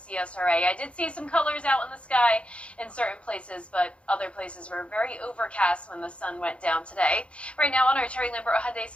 I did see some colors out in the sky in certain places, but other places were very overcast when the sun went down today. Right now on our Terry Lambert Hyundai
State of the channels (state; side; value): late; right; 0.060 ms